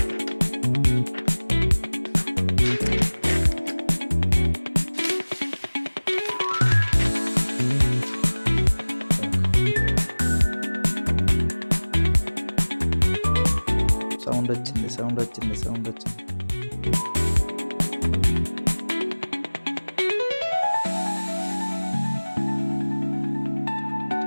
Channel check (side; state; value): both; inverted; correlation -1.00